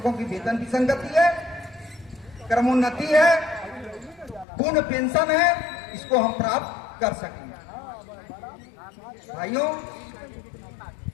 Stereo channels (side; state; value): right; drops out; at 4.5 s